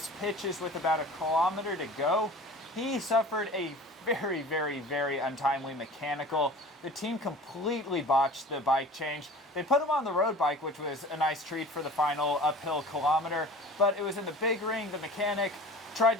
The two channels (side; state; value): both; normal; correlation 0.41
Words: pitches with about a kilometer to go, he suffered a very untimely mechanical. The team completely botched the bike change. They put him on the road bike, which was a nice treat for the final uphill kilometer, but it was in the big ring. The mechanic tried